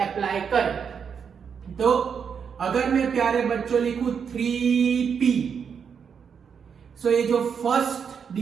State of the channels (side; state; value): left; quieter; 6.8 dB